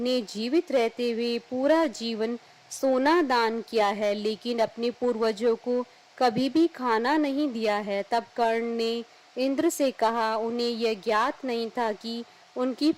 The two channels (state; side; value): identical; both; correlation 1.00